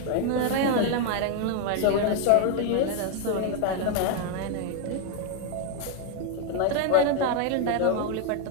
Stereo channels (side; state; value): both; different; correlation 0.00